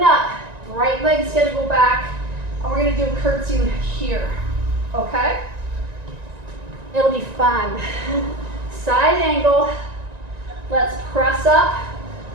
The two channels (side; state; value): left; late; 1.9 ms